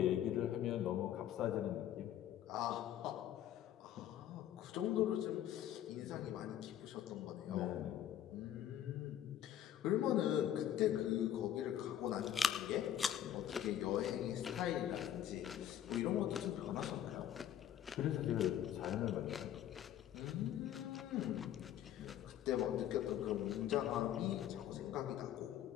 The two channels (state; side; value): quieter; right; 10.9 dB